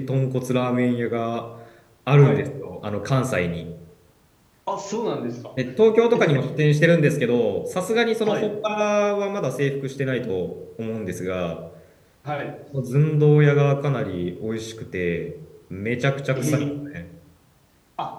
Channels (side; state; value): both; identical; correlation 1.00